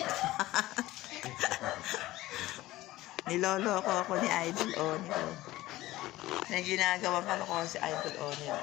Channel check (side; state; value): right; quieter; 17.1 dB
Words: Nilolo ko ni Idol Onil. Na ginagawa ko si Idol Onil.